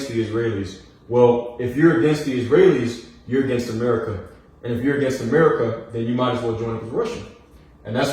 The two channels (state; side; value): identical; both; correlation 1.00